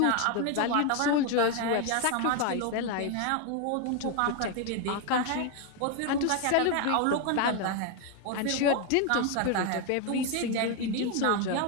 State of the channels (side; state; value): both; different; correlation 0.01